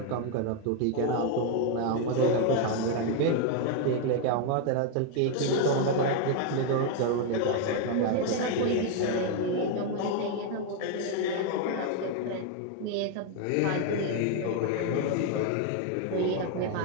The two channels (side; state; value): both; different; correlation 0.01